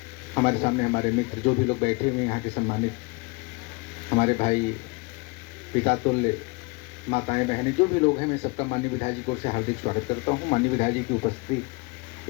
हमारे सामने, हमारे मित्र जो भी लोग बैठे हुए हैं यहाँ के सम्मानित, हमारे भाई पिता तुल्य, माताएं बहनें, जो भी लोग हैं, मैं सबका माननीय विधायक जी को से हार्दिक स्वागत करता हूँ। माननीय विधायक जी की उपस्थिति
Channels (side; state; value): right; quieter; 27.9 dB